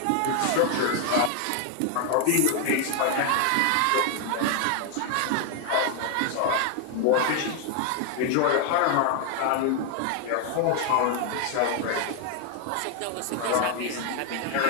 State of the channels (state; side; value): different; both; correlation 0.00